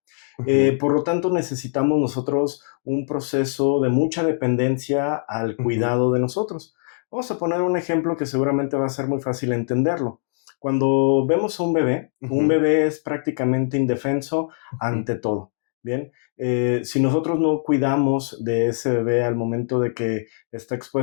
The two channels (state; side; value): silent; right; digital silence